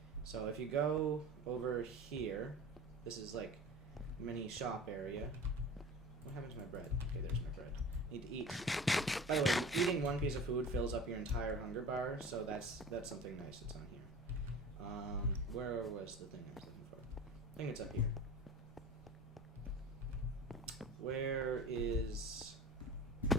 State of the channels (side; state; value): both; normal; correlation 0.37